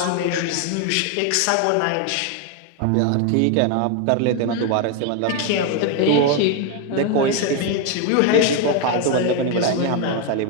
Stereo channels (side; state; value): both; different; correlation 0.01